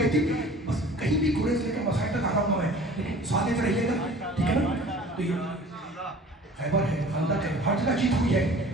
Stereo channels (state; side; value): normal; both; correlation 0.46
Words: تھی, بس کہیں بھی گریز لے کے مسائل تک آ رہا ہوں میں, لیکن سادے رہیے گا, ٹھیک ہے نا. تو یہ خیبر ہے, خندق ہے, ہر جگہ جیت ہوئی ہے,